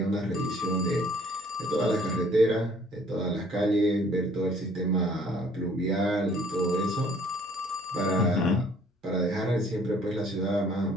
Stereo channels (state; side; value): normal; both; correlation 0.58